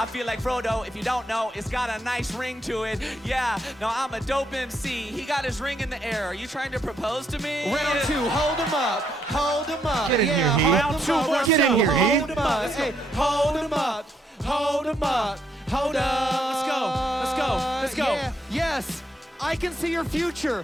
feel like Frodo, if you don't know, it's got a nice ring to it. Yeah, no, I'm a dope MC. He got his ring in the air. Are you trying to propose to me? Round two, hold him up, hold him up. Get in here, Heath. Round two, Round get in here, Heath. Hold him up, hey, hold him up, hold him up, hold up. Let's go. Yeah, yes, I can see your future.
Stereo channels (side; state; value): both; normal; correlation 0.75